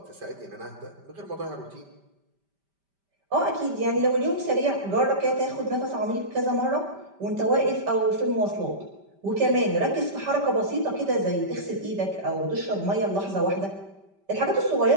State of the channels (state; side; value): late; left; 5.1 ms